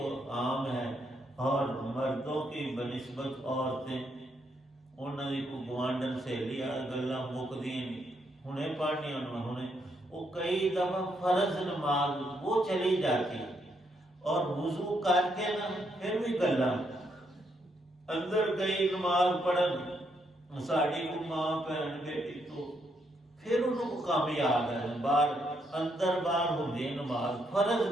عام ہے، اور مردوں کی بنسبت عورتیں، انہوں نے کو گوانڈن سے لیا گلاں مکدی ہنے پڑھنی، انہیں وہ کئی دفعہ فرض نماز وہ چلی جاتی، اور وضو کر کے نا پھر بھی گلاں اندر گئی نماز پڑھن، ساڑی کو ماں بہن بیٹی، تو پھر انہوں کو کام یاد ہے، باہر اندر باہر ہوندی نماز، فرض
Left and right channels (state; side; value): normal; both; correlation 0.76